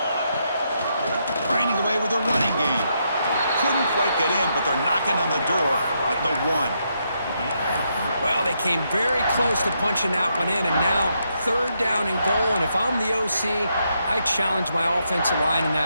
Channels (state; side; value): inverted; both; correlation -0.79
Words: Grinding away with their running game. Couldn't quite get in, but they're knocking on the door at the 1. Well, they came very close to punching that one in, and now third down and goal. And if I'm the OC, I challenge my offensive line in